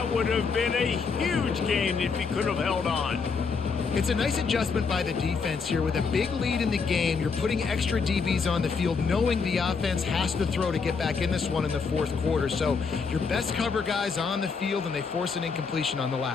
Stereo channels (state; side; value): quieter; right; 5.2 dB